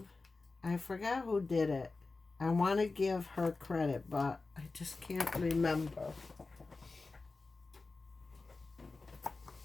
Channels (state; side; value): quieter; right; 3.7 dB